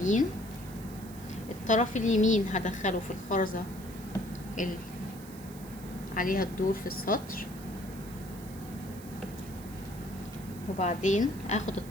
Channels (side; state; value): right; noise; hiss, 18 dB below the sound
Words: الطرف اليمين هدخله في الخرزة اللي عليها الدور في السطر، وبعدين اخد